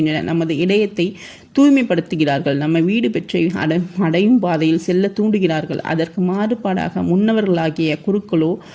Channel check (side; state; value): both; identical; correlation 1.00